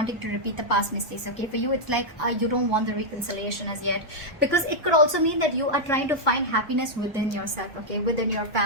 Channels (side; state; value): both; normal; correlation -0.05